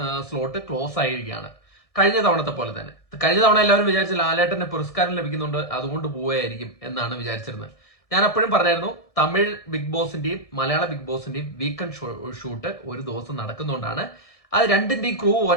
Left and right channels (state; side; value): late; right; 1.6 ms